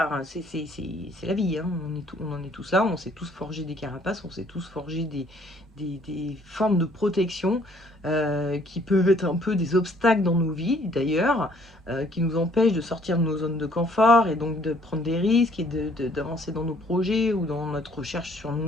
hein. C'est la vie, hein. On en est tous là, on s'est tous forgé des carapaces, on s'est tous forgé des formes de protection qui peuvent être un peu des obstacles dans nos vies d'ailleurs, qui nous empêchent de sortir de nos zones de confort et donc de prendre des risques et d'avancer dans nos projets ou dans notre recherche sur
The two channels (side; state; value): both; normal; correlation 0.61